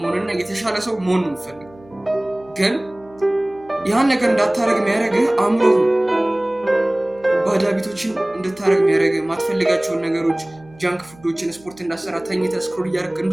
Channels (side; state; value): right; noise; hum, 25 dB below the sound